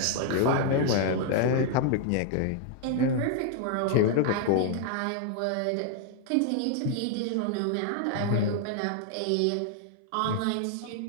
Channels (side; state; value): both; different; correlation 0.00